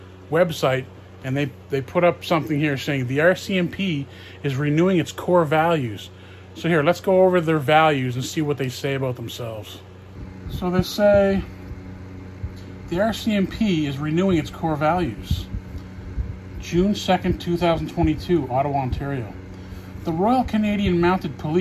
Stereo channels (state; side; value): identical; both; correlation 1.00